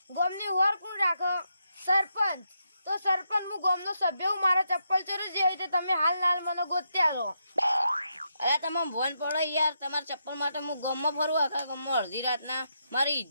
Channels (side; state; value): both; inverted; correlation -0.81